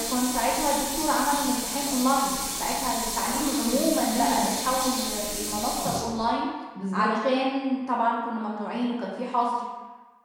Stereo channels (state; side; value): identical; both; correlation 1.00